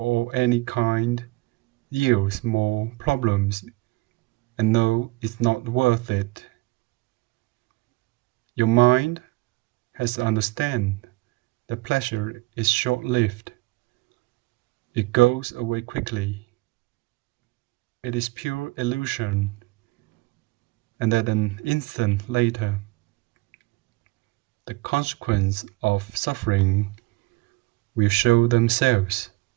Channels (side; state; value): left; quieter; 22.3 dB